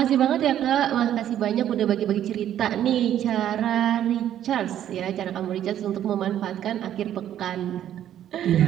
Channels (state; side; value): quieter; left; 11.0 dB